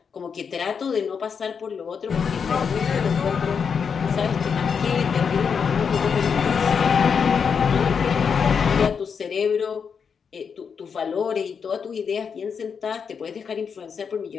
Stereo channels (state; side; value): quieter; right; 6.4 dB